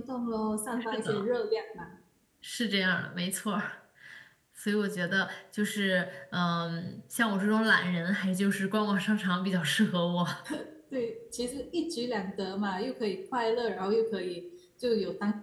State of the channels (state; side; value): identical; both; correlation 1.00